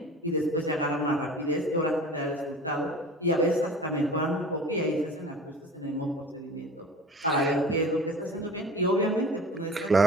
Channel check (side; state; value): both; normal; correlation 0.40